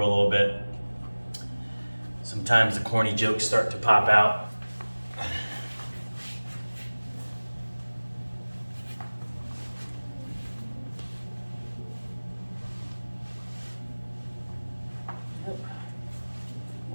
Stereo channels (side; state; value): both; inverted; correlation -1.00